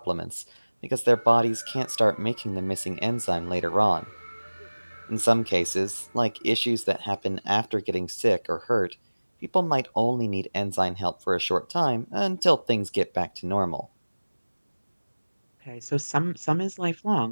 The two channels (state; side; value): inverted; both; correlation -1.00